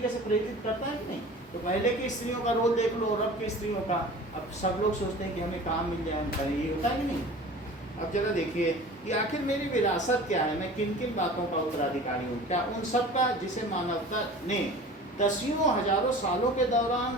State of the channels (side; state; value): both; normal; correlation 0.40